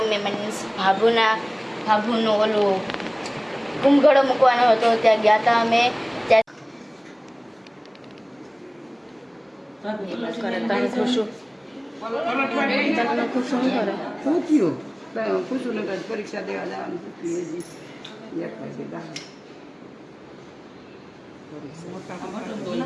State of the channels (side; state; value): both; identical; correlation 1.00